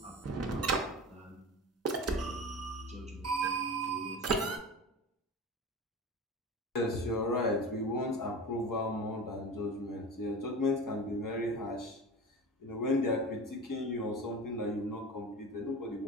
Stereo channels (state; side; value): normal; both; correlation 0.31